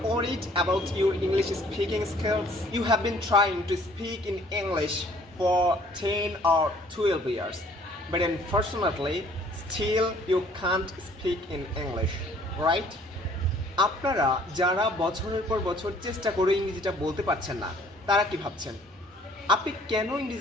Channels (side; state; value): both; normal; correlation 0.57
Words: worried about your English speaking skills? You have been trying to speak in English for 10 or 12 years, but unfortunately, still you can't speak in English, right? আপনারা যারা বছরের পর বছর চেষ্টা করে ইংরেজিটা বলতে পারছেন না, তারা কি ভাবছেন? আপনি কেন